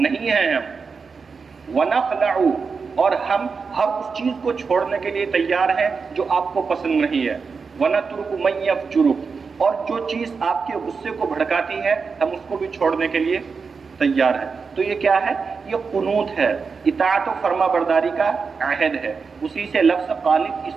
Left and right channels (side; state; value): left; quieter; 5.1 dB